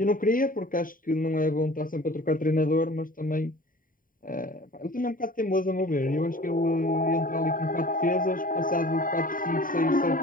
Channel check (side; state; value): right; late; 0.40 ms